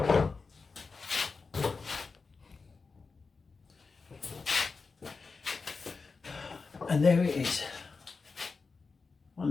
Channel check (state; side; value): quieter; right; 4.5 dB